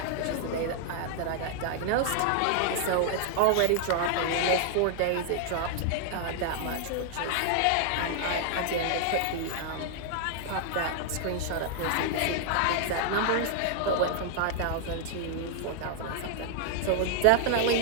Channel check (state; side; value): different; both; correlation 0.00